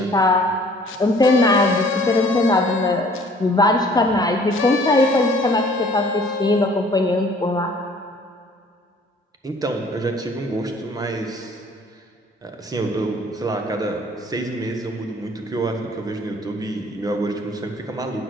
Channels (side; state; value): both; normal; correlation 0.55